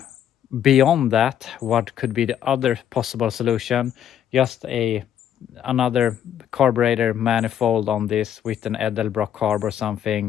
beyond that, what could be the other possible solution? Just another carburetor manifold on this with an Edelbrock carb or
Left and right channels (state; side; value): quieter; right; 9.8 dB